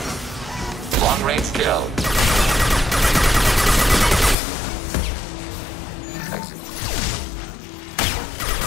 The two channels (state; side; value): drops out; right; at 4.4 s